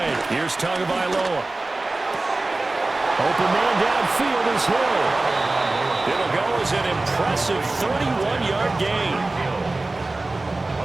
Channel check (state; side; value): quieter; left; 3.1 dB